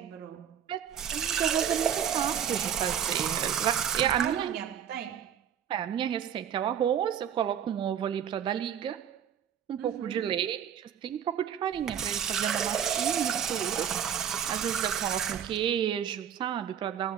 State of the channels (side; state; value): left; quieter; 8.9 dB